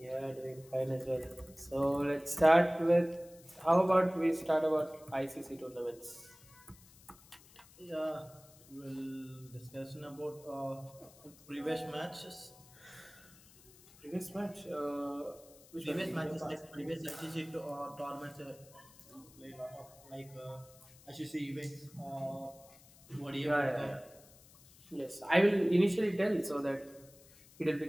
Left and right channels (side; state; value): left; noise; hiss, 24 dB below the sound